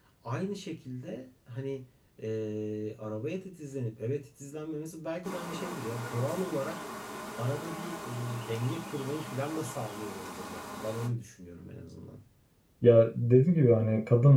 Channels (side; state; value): both; identical; correlation 1.00